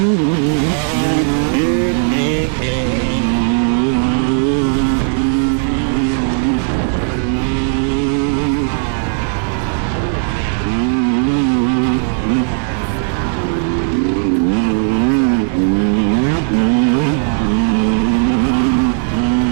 Oh my gosh, that guy was close. Oh, what's that? Oh, no, never mind. I don't know who it is. That's the other thing. I gotta get more used to all these people that are racing big bikes, because minis, I knew absolutely everybody, and I could like just name them just by looking at them. So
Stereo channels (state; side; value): silent; left; digital silence